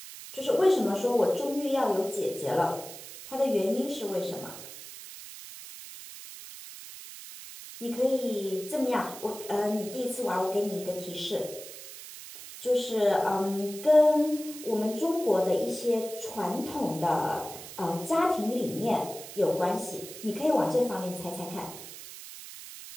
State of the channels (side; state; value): right; noise; hiss, 13 dB below the sound